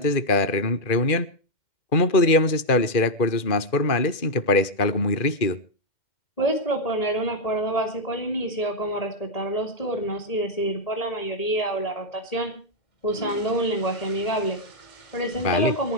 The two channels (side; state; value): right; late; 2.4 ms